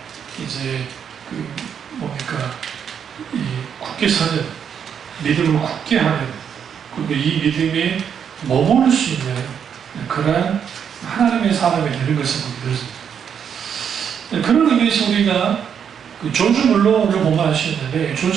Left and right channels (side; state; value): left; quieter; 7.8 dB